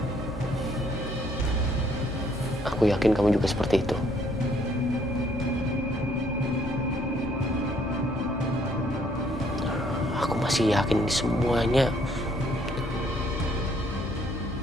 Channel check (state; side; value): normal; both; correlation 0.65